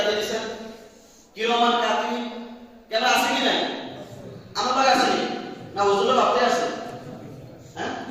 দিয়েছেন, কিরমান কাতি ক্যামেরা আছে কি নাই? আমার কাছে আছে না? হুজুরের বাপতে আছে? হ্যাঁ,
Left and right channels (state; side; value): identical; both; correlation 1.00